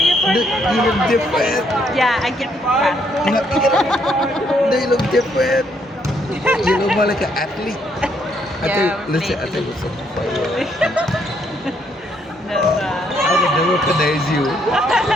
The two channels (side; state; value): both; normal; correlation 0.72